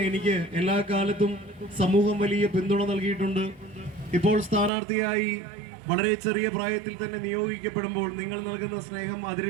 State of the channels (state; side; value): drops out; left; at 4.7 s